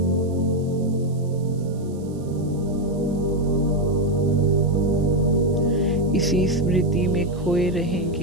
इसी स्मृति में खोए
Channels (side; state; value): right; noise; hiss, 27 dB below the sound